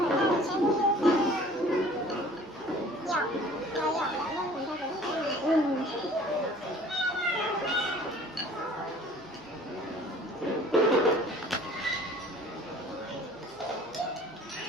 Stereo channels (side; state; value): left; noise; hum, 30 dB below the sound